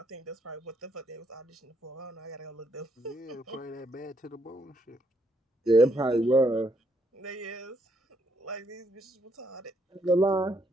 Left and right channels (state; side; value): normal; both; correlation 0.74